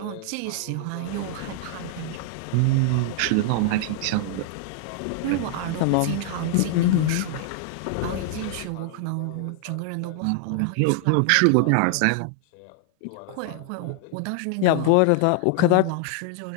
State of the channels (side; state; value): both; different; correlation 0.00